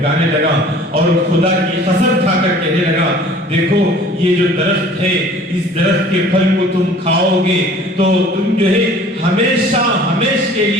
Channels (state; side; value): normal; both; correlation 0.49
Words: لگا اور خدا کی قسم کھا کر کہنے لگا، دیکھو یہ جو درخت ہے، اس درخت کے پھل کو تم کھاؤ گے تو تم جو ہے ہمیشہ ہمیشہ کے